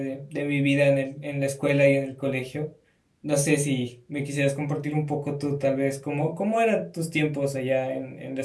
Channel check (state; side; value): identical; both; correlation 1.00